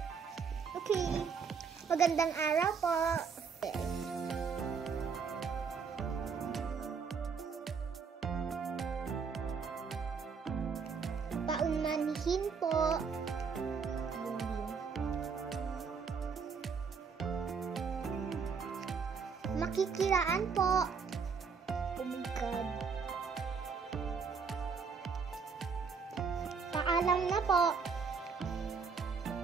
Okay. Magandang araw po. Paunmanhin po. Makikiraan po. Oh my God. Paalam na po.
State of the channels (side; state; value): left; quieter; 5.7 dB